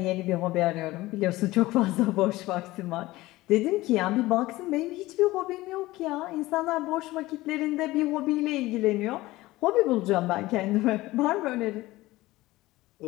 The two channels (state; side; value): quieter; right; 18.5 dB